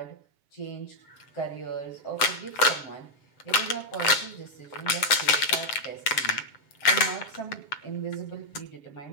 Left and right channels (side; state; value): right; late; 7.3 ms